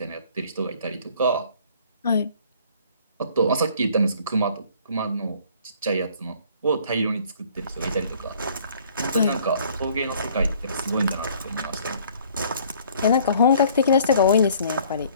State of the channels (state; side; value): inverted; both; correlation -0.56